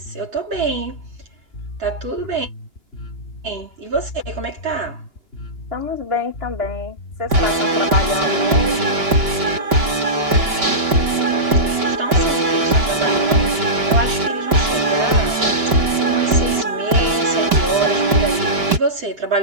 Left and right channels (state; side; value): late; left; 2.9 ms